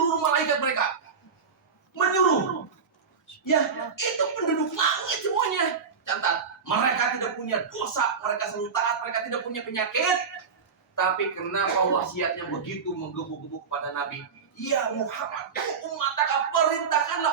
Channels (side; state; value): left; quieter; 5.9 dB